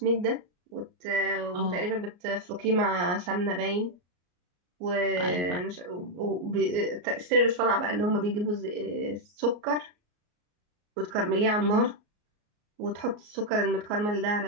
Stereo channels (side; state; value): left; late; 34 ms